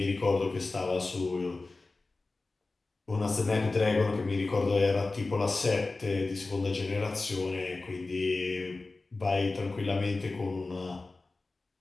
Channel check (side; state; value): right; quieter; 3.4 dB